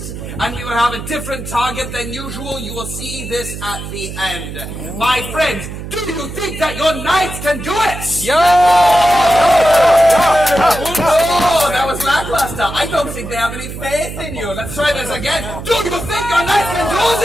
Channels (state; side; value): noise; right; hum, 9 dB below the sound